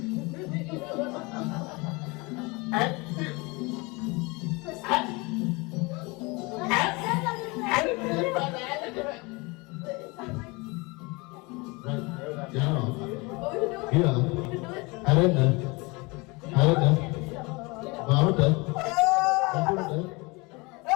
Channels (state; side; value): quieter; right; 26.3 dB